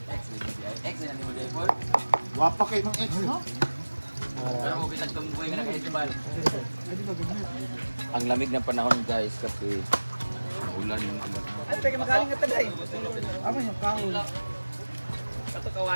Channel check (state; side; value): inverted; both; correlation -1.00